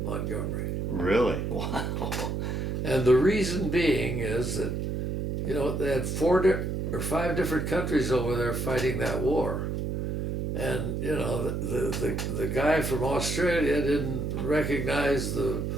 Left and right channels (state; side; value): noise; right; hum, 2 dB below the sound